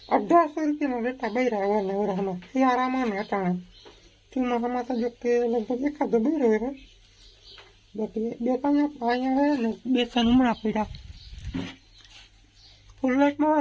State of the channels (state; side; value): identical; both; correlation 1.00